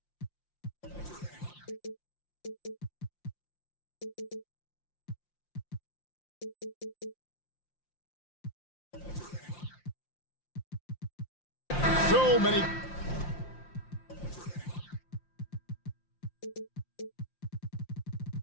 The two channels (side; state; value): right; late; 5.7 ms